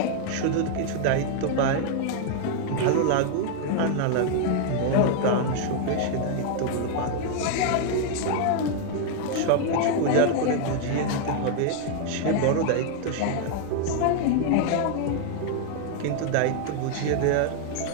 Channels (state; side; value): different; both; correlation 0.00